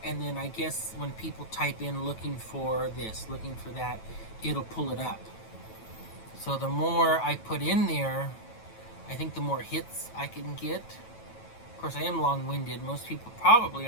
and then I guess when people type in looking for this, looking for that, it'll pull it up. So the more I put in there, I think the more hits I can get. Of course, I am long-winded. Most people probably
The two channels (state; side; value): late; right; 9.1 ms